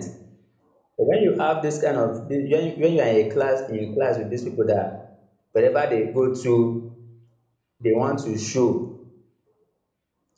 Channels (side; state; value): both; identical; correlation 1.00